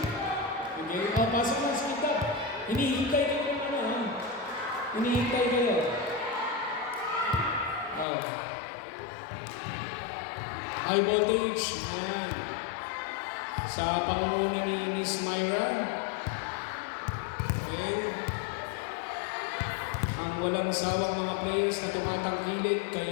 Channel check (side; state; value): right; drops out; at 8.1 s